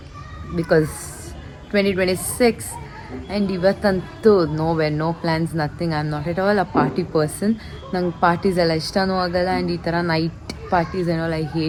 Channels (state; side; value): identical; both; correlation 1.00